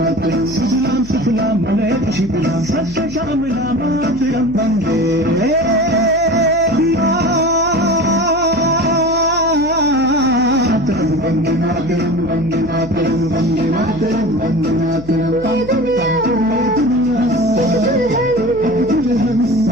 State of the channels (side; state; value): left; noise; hum, 16 dB below the sound